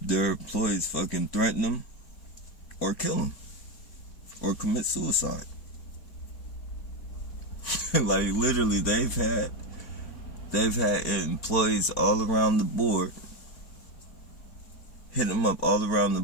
their employees fucking threaten them or kill them or commit suicide. Like, literally, they've had employees all around the board, hit them up all around the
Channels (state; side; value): late; right; 4.6 ms